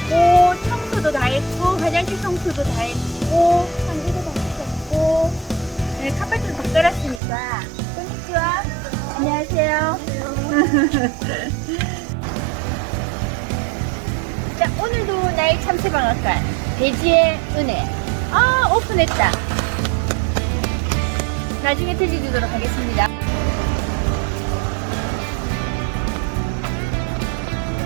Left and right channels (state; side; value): drops out; left; at 7.2 s